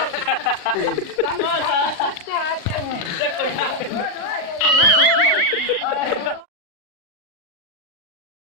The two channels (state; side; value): late; right; 39 ms